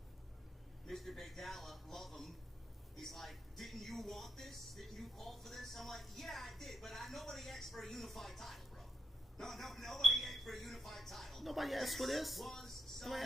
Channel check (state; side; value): normal; both; correlation 0.82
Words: Mr. Big Dalla, love him. He's like, didn't you want this? Didn't you call for this? I'm like, yeah, I did, but nobody asked for a unified title, bro. Nobody asked for a unified title. Nobody asked for this. Nobody